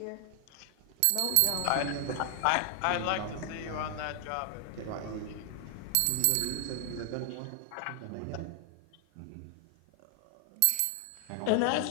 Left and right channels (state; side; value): different; both; correlation 0.00